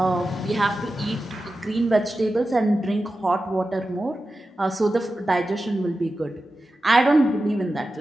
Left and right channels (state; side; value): normal; both; correlation 0.93